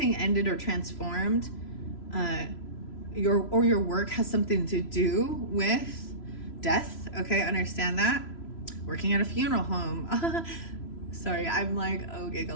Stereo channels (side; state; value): right; late; 3.0 ms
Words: ended or transformed. Your work has something to do with death. Okay, understand that. Working at a funeral home. Sorry, I'm like, oh,